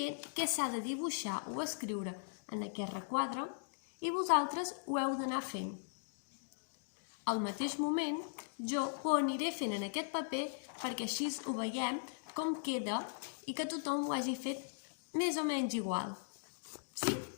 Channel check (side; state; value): right; silent; digital silence